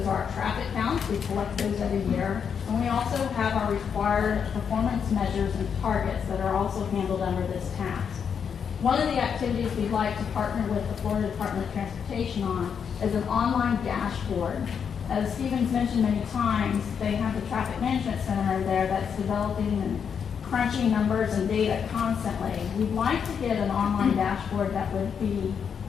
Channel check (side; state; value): right; quieter; 7.1 dB